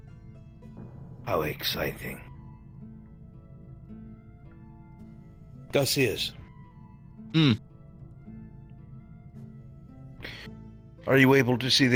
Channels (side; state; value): both; identical; correlation 1.00